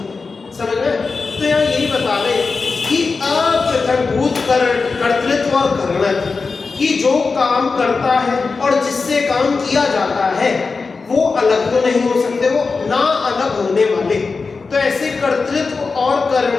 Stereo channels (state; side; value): quieter; right; 4.4 dB